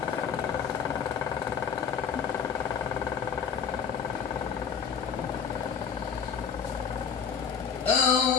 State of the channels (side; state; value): right; quieter; 6.9 dB